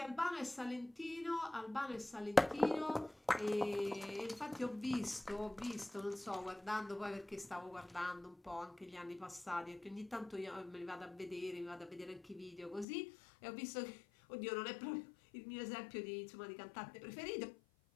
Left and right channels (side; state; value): right; drops out; at 12.9 s